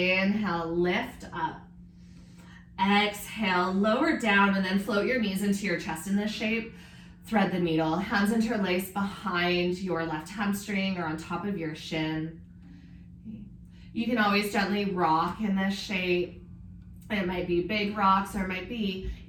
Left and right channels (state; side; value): identical; both; correlation 1.00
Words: lift up. Exhale, lower down, and then float your knees into your chest in this shape. Thread the needle. Hands interlace behind your left hamstring or on top of your shin. You can always gently rock in this shape. It might be big rocks, or it might be